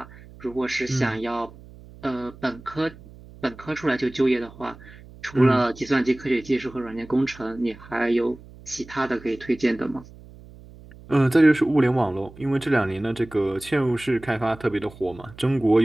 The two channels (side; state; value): right; noise; hum, 20 dB below the sound